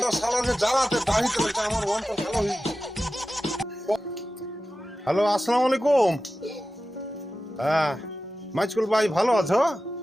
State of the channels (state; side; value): normal; both; correlation 0.94